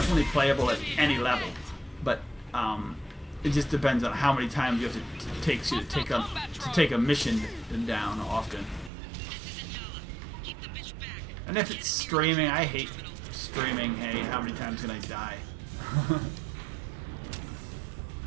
playable at any level, but it just depends on how many times you have to take a mission down often. And if it's streaming, I hate streaming. Hey, how many times can I die?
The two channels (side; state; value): left; drops out; at 8.9 s